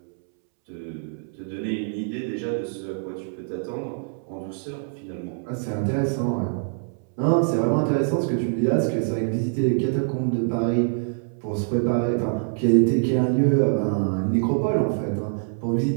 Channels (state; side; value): silent; left; 62 dB below the other